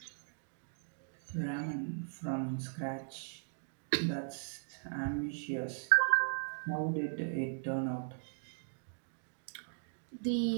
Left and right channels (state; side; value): silent; left; digital silence